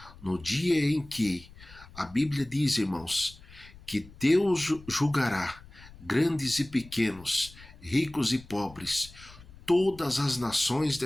no dia em que a Bíblia diz, irmãos, que Deus julgará grandes e pequenos, ricos e pobres, todas as nações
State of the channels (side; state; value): left; noise; rumble, 21 dB below the sound